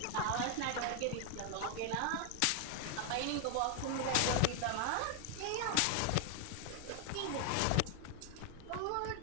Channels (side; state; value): both; different; correlation 0.00